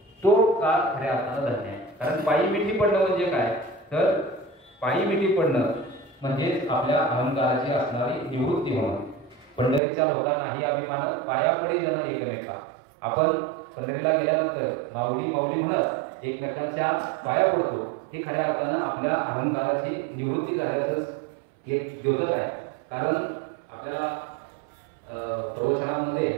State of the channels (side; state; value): left; drops out; at 9.8 s